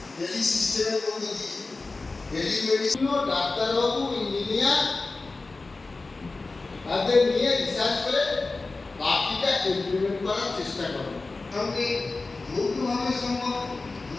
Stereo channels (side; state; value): right; quieter; 3.6 dB